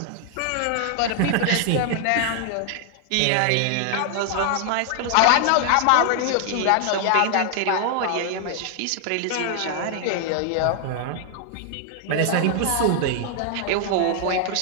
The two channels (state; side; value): different; both; correlation 0.00